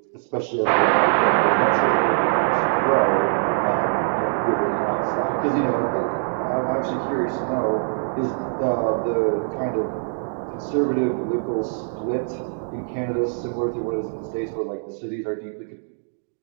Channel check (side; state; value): left; silent; digital silence